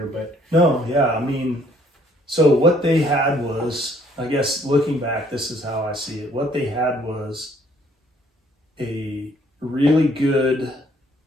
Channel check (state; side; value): normal; both; correlation 0.63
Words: but no, yeah, I mean, so what they had was, I guess looking back, this is how I see it. What they had was they